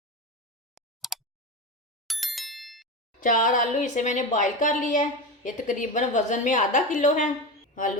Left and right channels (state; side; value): normal; both; correlation 0.22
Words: 4 आलू इसे मैंने बॉईल कर लिया है। ये तकरीबन वज़न में आधा किलो है।